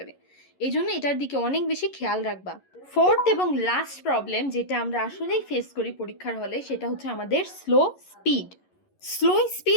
এই জন্য এটার দিকে অনেক বেশি খেয়াল রাখবা। ফোর্থ এবং লাস্ট প্রবলেম যেটা আমরা আসলেই ফেস করি পরীক্ষার হলে সেটা হচ্ছে আমাদের স্লো স্পিড। স্লো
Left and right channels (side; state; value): right; late; 11 ms